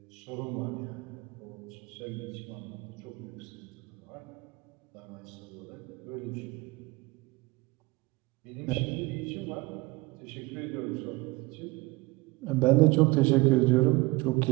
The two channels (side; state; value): left; quieter; 23.2 dB